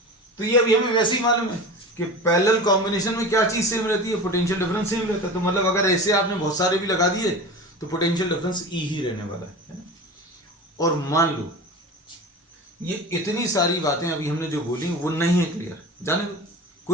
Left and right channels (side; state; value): both; normal; correlation 0.32